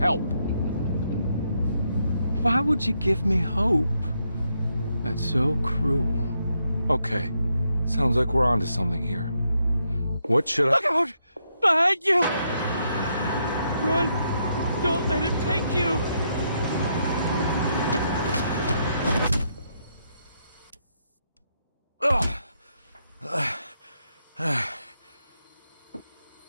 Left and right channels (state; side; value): inverted; both; correlation -0.78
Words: Why would you give me hope? That's so cruel. Okay, sounds like we're onto something here. What should I— Look out! Behind you! Run! Don't let him take you!